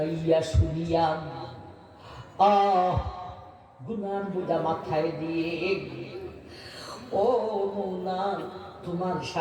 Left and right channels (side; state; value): both; identical; correlation 1.00